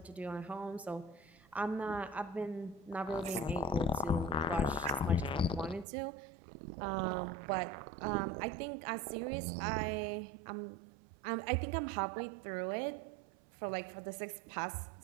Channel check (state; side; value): drops out; left; at 5.9 s